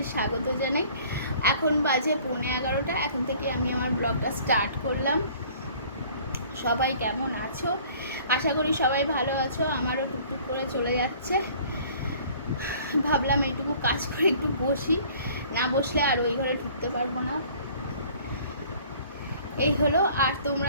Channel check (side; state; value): both; inverted; correlation -0.52